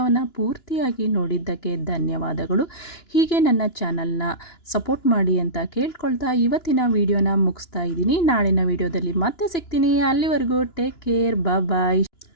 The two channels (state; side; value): late; right; 2.9 ms